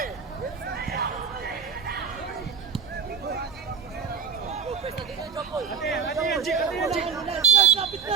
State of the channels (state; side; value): quieter; left; 6.2 dB